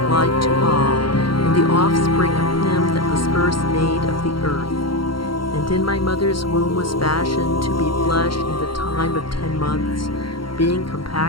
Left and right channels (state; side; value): late; right; 0.73 ms